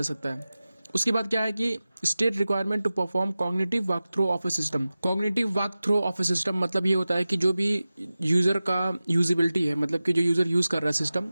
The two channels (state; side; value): inverted; both; correlation -0.96